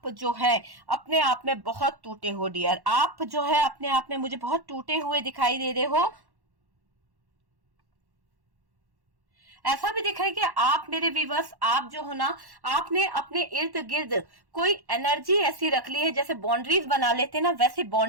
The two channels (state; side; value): late; left; 1.1 ms